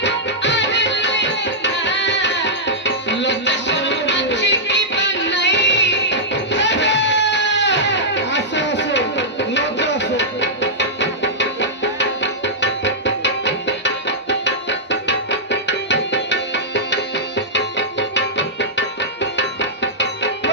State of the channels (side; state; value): both; normal; correlation -0.11